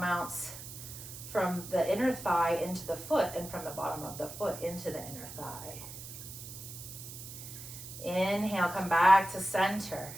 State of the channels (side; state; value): right; noise; hiss, 12 dB below the sound